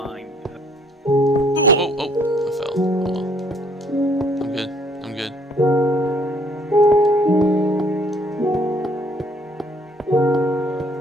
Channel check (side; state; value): both; normal; correlation 0.62